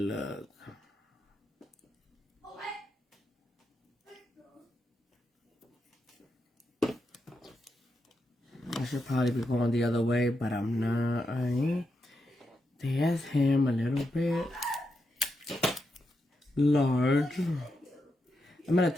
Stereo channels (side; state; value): both; normal; correlation 0.84